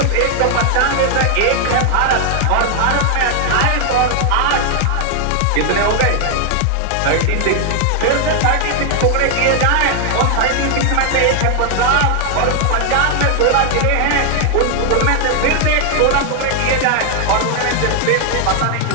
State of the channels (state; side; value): different; both; correlation 0.00